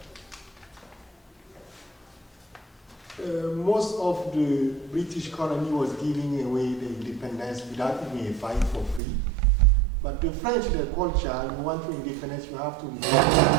Most of the British colony was giving away the independence without even a fight for free. But the French, their culture, you want to independence, you have to get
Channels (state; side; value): drops out; left; at 9.0 s